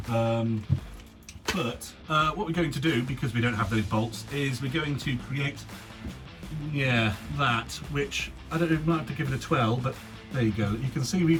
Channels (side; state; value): both; identical; correlation 1.00